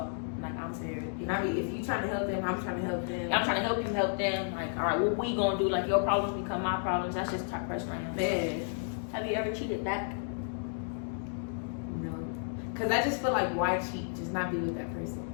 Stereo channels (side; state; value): right; silent; digital silence